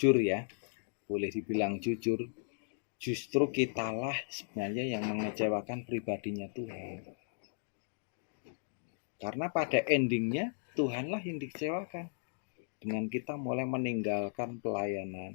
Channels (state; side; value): silent; right; digital silence